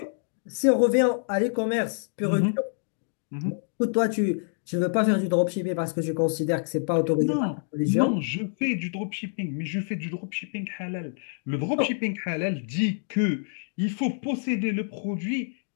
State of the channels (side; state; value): right; silent; digital silence